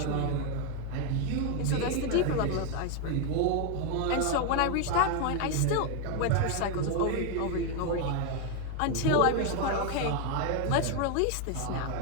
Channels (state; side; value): different; both; correlation 0.01